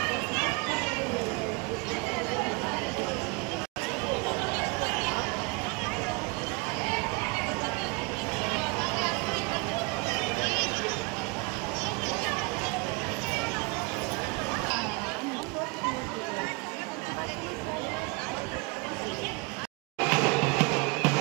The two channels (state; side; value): quieter; left; 28.8 dB